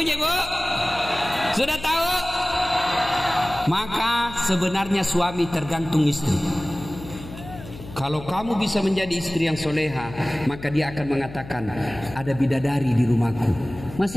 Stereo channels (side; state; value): left; noise; hum, 14 dB below the sound